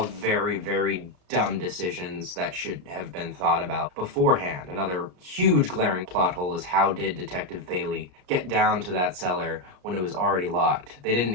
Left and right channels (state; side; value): late; left; 33 ms